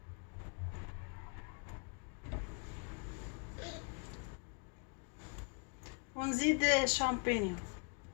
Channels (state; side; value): quieter; right; 38.0 dB